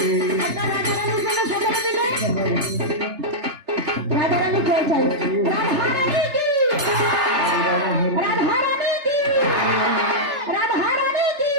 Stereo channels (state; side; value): late; left; 3.3 ms